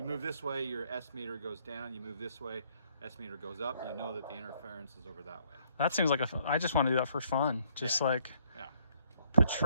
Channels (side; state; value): both; inverted; correlation -0.67